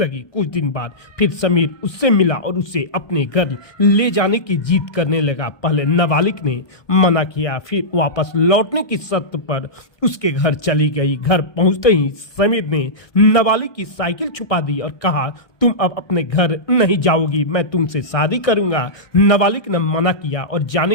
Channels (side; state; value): right; late; 1.2 ms